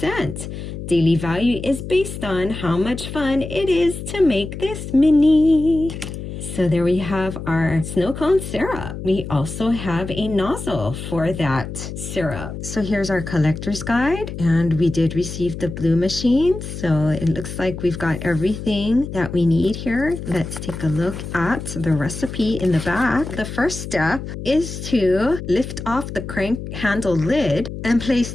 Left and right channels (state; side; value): noise; left; hum, 8 dB below the sound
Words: Daily value is based on how much fun it is to make this mini. So there we have our snow cone syrup. We also have a nozzle for that syrup. So here's our collector's guide, and we did receive the blue machine. So it looks like we've got everything that we need here. Let's take a look at the recipe in the back. The first step is to lift off the crank handle lid and place